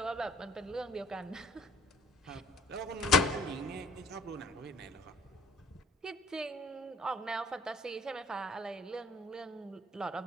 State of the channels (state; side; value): normal; both; correlation 0.55